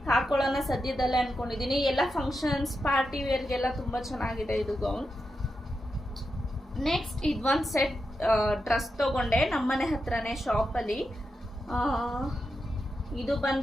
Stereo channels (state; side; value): normal; both; correlation 0.88